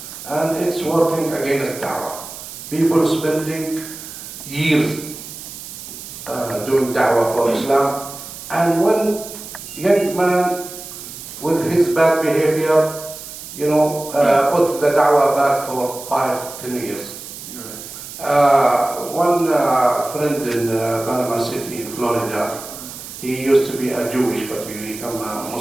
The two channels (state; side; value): noise; right; hiss, 12 dB below the sound